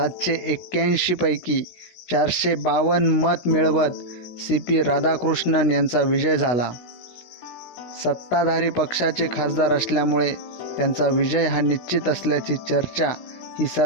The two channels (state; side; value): late; right; 16 ms